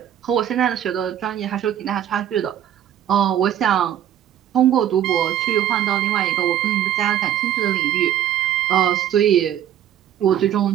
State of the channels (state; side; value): quieter; left; 10.8 dB